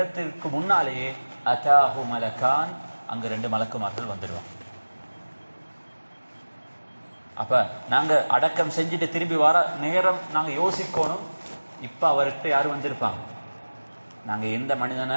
முன்னாலேயே அதாஹு மலகான், அங்க 2 மலக்குமார்கள் வந்துடுவாங்க. அப்ப நாங்க அடக்கம் செஞ்சுட்டு திரும்பி வர நேரம் நாங்க யோசிக்கணும், இப்ப அவர்கிட்ட யாரு வந்திருப்பாங்க? நாங்க எந்த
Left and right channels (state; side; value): inverted; both; correlation -1.00